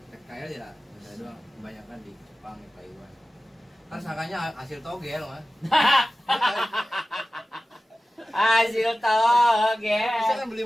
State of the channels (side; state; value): both; normal; correlation 0.95